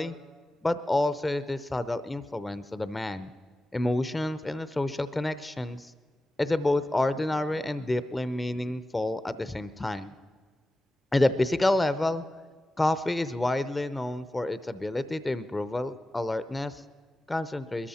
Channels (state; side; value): normal; both; correlation 0.94